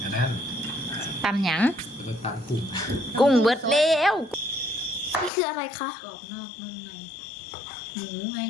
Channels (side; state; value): right; drops out; at 5.3 s